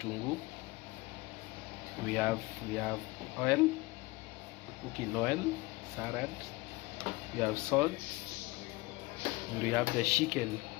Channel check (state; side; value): quieter; right; 22.5 dB